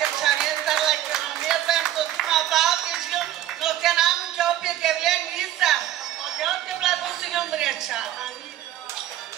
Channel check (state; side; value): quieter; left; 12.8 dB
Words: Лакеромета, Сотима Балти жил, но те нам ке опет Евлен Ниса. Отдел те благословил Мряча.